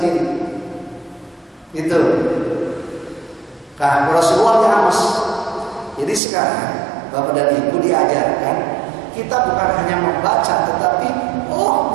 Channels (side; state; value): left; drops out; at 6.2 s